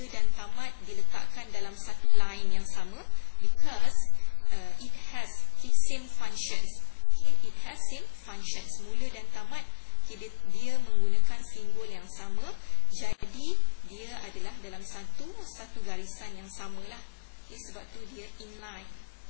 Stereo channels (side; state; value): right; silent; 57 dB below the other